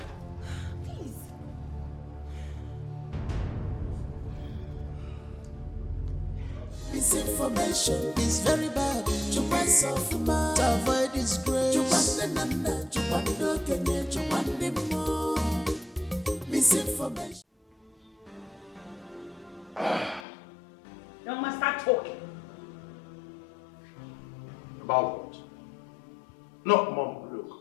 Please. Misinformation is very bad. You want something to avoid disgrace. You want the nana, you want the Kenya, you want the more. Misinformation. You must start talking. About what? No, Mom,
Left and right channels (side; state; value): right; drops out; at 20.2 s